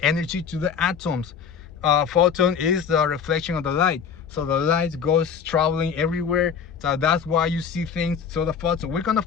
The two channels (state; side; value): quieter; right; 6.9 dB